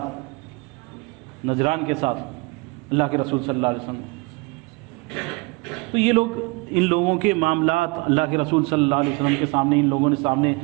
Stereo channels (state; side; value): quieter; left; 27.1 dB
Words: نجران کے ساتھ اللہ کے رسول صلی اللہ علیہ وسلم. تو یہ لوگ، ان لوگوں کے معاملات اللہ کے رسول صلی اللہ علیہ وسلم کے سامنے، ان لوگوں نے سامنے